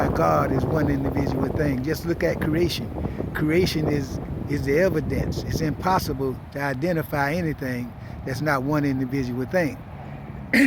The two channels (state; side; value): identical; both; correlation 1.00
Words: God is one individual thing. Just look at creation. Creation is the evidence. It's impossible to identify anything that's not one individual thing.